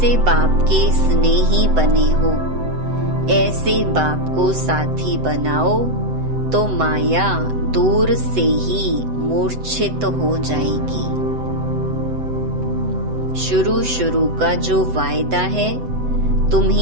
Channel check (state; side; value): late; left; 7.9 ms